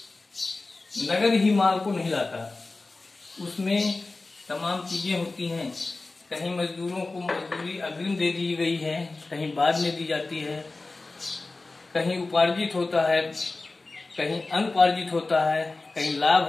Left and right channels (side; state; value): right; quieter; 3.4 dB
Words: नगद ही माल को नहीं लाता, उसमें तमाम चीजें होती हैं। कहीं मजदूरों को मजदूरी अग्रिम दे दी गई है, कहीं बाद में दी जाती है, कहीं उपार्जित होता है, कहीं अनुपार्जित होता है, कहीं लाभ